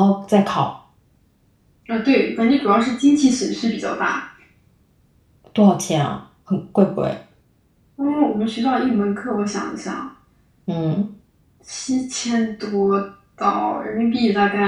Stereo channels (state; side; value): identical; both; correlation 1.00